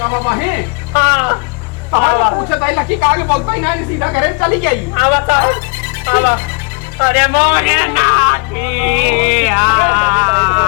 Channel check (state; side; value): quieter; right; 34.6 dB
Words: हाँ पूछा था लकी का आगे बोलता ही नहीं सीधा करे चली गई। आवा था आवा। अरे मोरे नाथिया